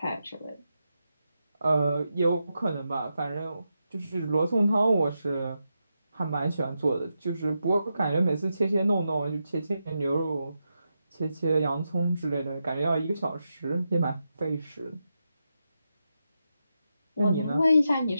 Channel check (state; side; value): inverted; both; correlation -0.87